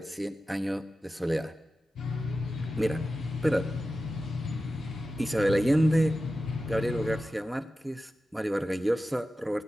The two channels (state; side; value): normal; both; correlation 0.93